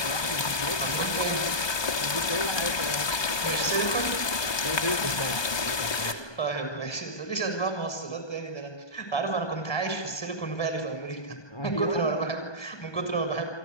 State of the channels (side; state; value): right; late; 1.2 ms